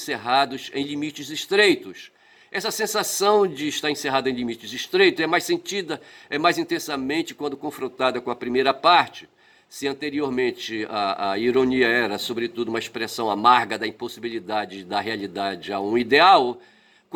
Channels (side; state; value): both; identical; correlation 1.00